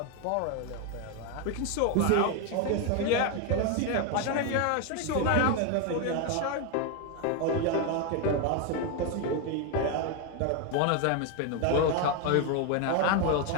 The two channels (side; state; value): both; different; correlation 0.01